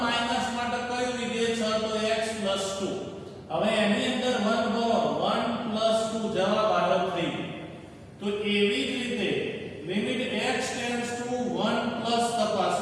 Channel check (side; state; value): both; identical; correlation 1.00